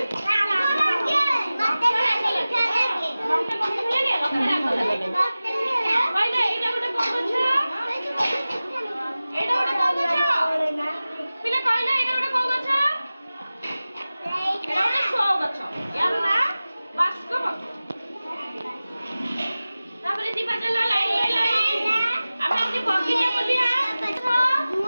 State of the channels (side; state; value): both; inverted; correlation -0.97